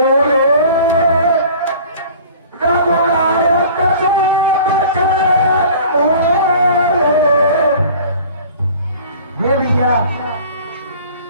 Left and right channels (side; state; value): both; inverted; correlation -0.45